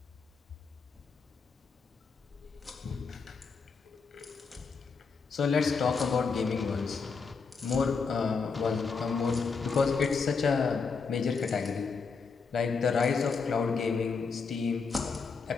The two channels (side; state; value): right; quieter; 5.1 dB